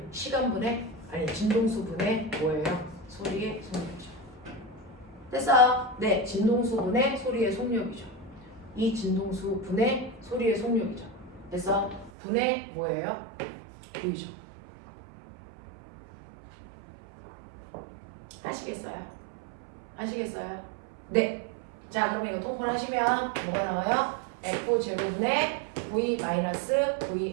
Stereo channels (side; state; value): left; drops out; at 12.1 s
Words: 시간분의 아니 진동수분의 뭐예요? 소리의 속력이죠. 그래서 네, 진동수분의 소리의 속력이죠. 이 진동수분의 소리의 속력이죠. 그래서 분의 뭐예요? V죠. 아시겠어요? 아시겠어요? 네. 자, 그러면 이거 통분하시면 뭐가 나와요? F0분의